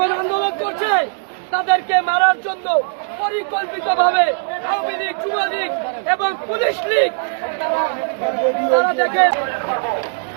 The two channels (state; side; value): silent; left; digital silence